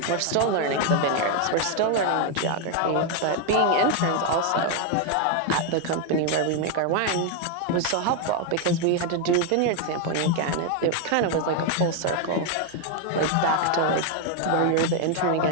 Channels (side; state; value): both; different; correlation 0.01